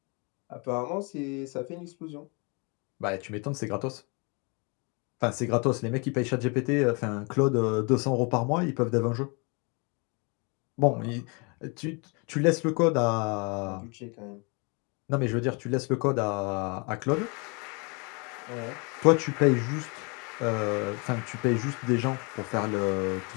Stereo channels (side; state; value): right; quieter; 32.3 dB